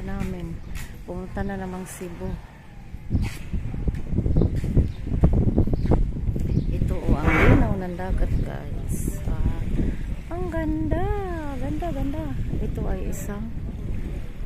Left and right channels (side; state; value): both; identical; correlation 1.00